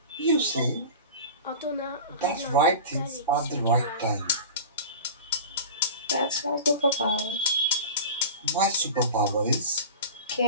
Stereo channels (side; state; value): both; inverted; correlation -0.34